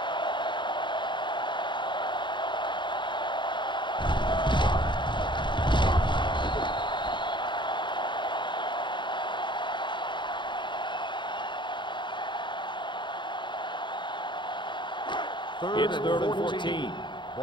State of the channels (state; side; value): late; right; 0.23 ms